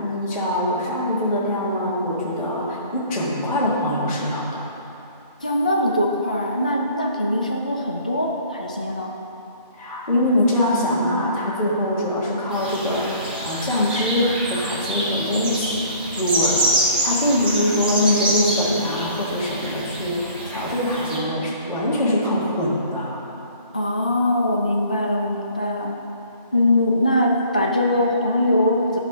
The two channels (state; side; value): inverted; both; correlation -0.54